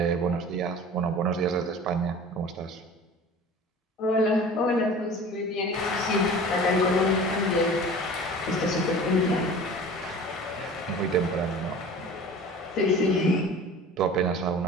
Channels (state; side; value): normal; both; correlation 0.41